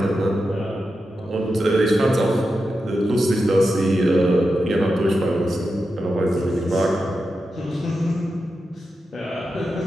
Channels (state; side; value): normal; both; correlation 0.89